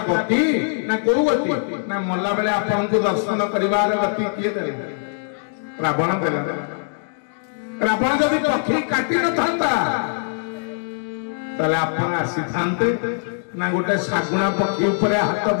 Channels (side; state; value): right; silent; digital silence